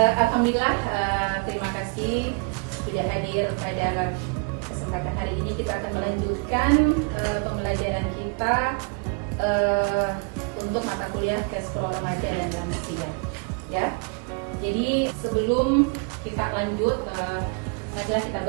Alhamdulillah, terima kasih sudah hadir pada kesempatan hari ini. Kita akan melanjutkan pembelajaran kita untuk mata kuliah Gastro Remaja dan Lansia. Ya. Jadi sebelum kita lanjut, marilah kita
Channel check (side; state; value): left; quieter; 36.2 dB